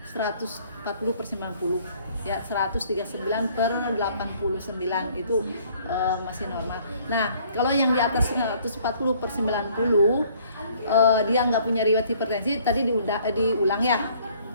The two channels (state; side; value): inverted; both; correlation -0.59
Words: 140/90 ya 139/89 itu masih normal. Nah kalau yang di atas 140/90 dia nggak punya riwayat hipertensi, tadi diulang ya,